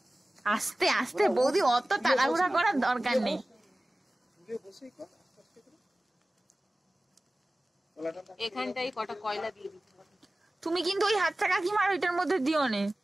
আস্তে আস্তে বৌদি, অত তাড়াহুড়া করার দরকার নেই। এখানটাই কটা কয়লা দিয়ে দিতে হবে। তুমি কিন্তু ওই হাতটা কাকিমার ওইটার মধ্যে দিও নে,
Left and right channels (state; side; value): normal; both; correlation 0.97